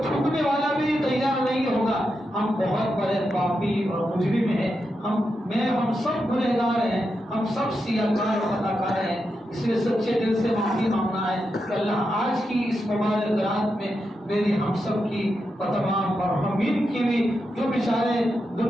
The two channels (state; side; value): normal; both; correlation 0.86